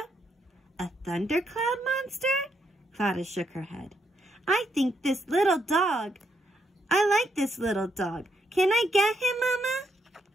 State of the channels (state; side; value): normal; both; correlation 0.77